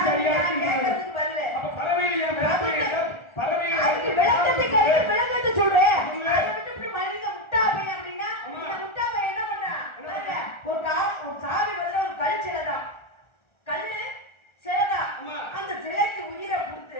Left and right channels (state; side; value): late; right; 1.4 ms